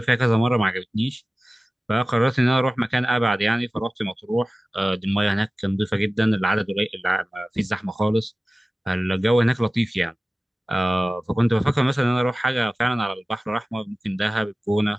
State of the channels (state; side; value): normal; both; correlation 0.97